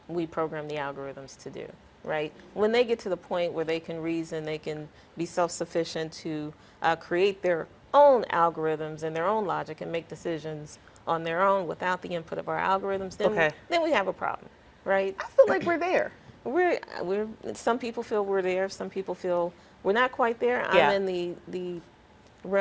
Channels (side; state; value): both; identical; correlation 1.00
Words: we program the algorithms to do, right? When they get to the point where they can reason, they can be self-sufficient to create their own algorithms and their own logic and make decisions on their own without the input of our algorithms, then we have a problem, right? I feel like we're there. Some people feel we're there. Some people feel we're not quite there. Yeah. I'm in the